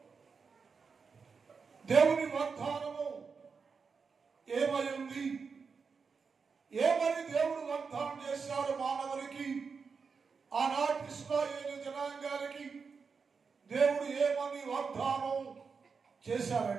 దేవుని వాగ్దానము ఏమై ఉంది, ఏమని దేవుడు వాగ్దానం చేశాడు మానవునికి, ఆనాటి ఇశ్రాయేలు జనాంగానికి దేవుడు ఏమని వాగ్దానం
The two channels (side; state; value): left; quieter; 5.3 dB